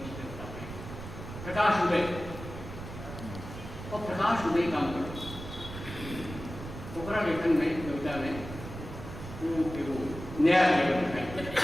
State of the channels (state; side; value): noise; right; rumble, 11 dB below the sound